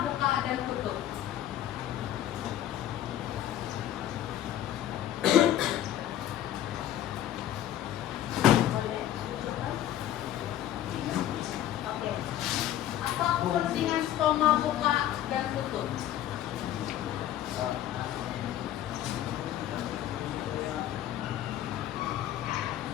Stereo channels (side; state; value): right; quieter; 12.1 dB